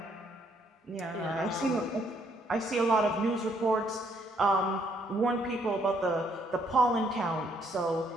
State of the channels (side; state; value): both; normal; correlation 0.69